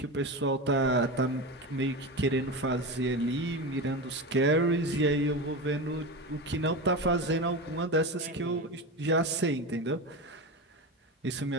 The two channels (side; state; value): both; normal; correlation 0.22